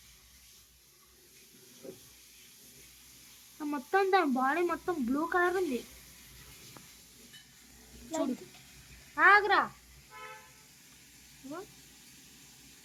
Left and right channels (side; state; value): both; identical; correlation 1.00